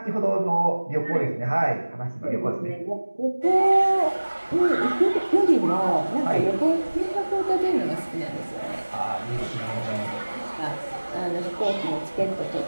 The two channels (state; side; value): inverted; both; correlation -1.00